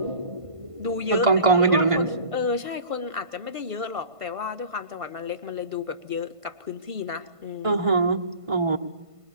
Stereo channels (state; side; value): late; left; 1.5 ms